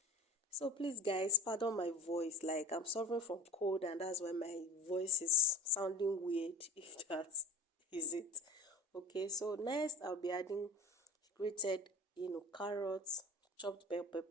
So please guys, pardon my voice, like I'm suffering from cold and that's why my voice is sounding weird, if that is it. Okay, so next I'll be adding grated carrots, chopped bell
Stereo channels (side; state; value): both; normal; correlation 0.38